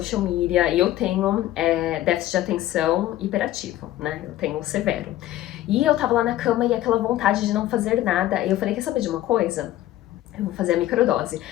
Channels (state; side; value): quieter; right; 14.3 dB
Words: media, e eu tenho déficit de atenção hiperativo, né, eu tenho severo. E eu tava lá na cama e aquela vontade de não fazer nada, e eu falei, quer saber de uma coisa? Eu vou fazer a microdose.